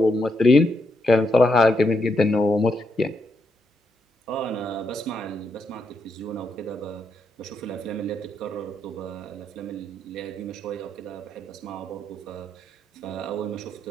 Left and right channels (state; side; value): normal; both; correlation 0.80